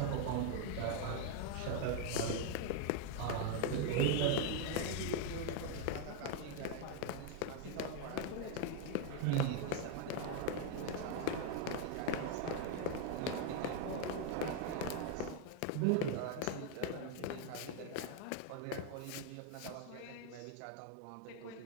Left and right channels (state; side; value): different; both; correlation 0.01